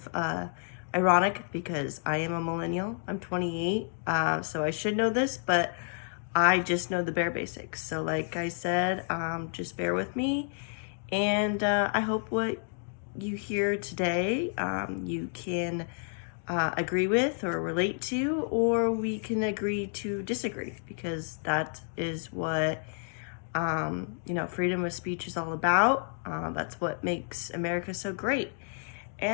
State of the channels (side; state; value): right; silent; 58 dB below the other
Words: ironic because I am a millennial. I'm 28, so I should know this, but I just know the bare basics. So like I said, just bear with me, and I hope what you hear today you can agree with or relate to, or we can agree to disagree, because that is what freedom of speech is all about. That's what makes America so great,